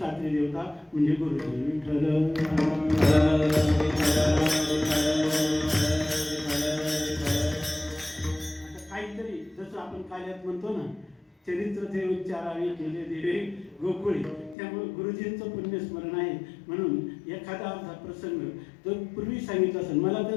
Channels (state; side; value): drops out; right; at 14.6 s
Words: देवता म्हणजे गुरुजी. विठ्ठल काहीतरी जसं आपण काल्यात म्हणतो ना चरित्र ते उच्चारावे केले देवे गोकुळी त्यामुळे गुरुजींचं पुण्यस्मरण आहे म्हणून एखादा असा प्रसंग तो पूर्वी सांगितला असेल मला